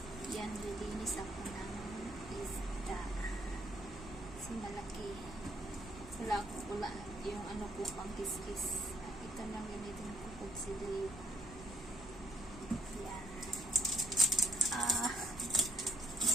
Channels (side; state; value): left; noise; rumble, 14 dB below the sound